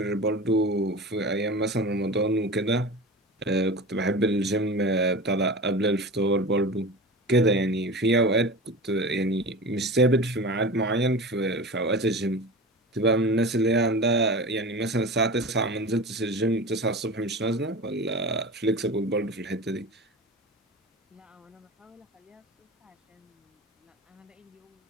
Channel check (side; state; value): both; normal; correlation 0.31